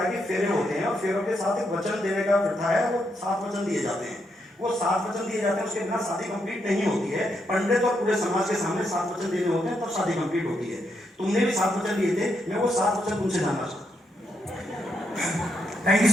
है कि फेरे होते हैं, और फेरों के साथ एक वचन देने का प्रथा है, वो 7 वचन दिए जाते हैं। वो 7 वचन दिए जाते हैं, उसके बिना शादी कंप्लीट नहीं होती है। पंडित और पूरे समाज के सामने 7 वचन देने होते हैं, तब शादी कंप्लीट होती है। तुमने भी 7 वचन दिए थे, मैं वो 7 वचन तुमसे जानना चाहता हूँ। Thank you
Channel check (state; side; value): normal; both; correlation 0.80